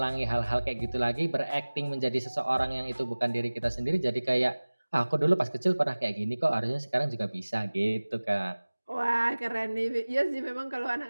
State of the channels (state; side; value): inverted; both; correlation -1.00